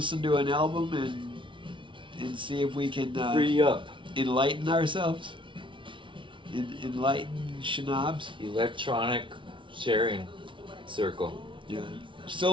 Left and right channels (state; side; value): late; left; 0.24 ms